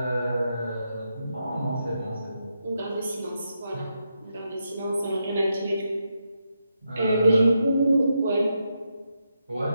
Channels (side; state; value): both; inverted; correlation -0.83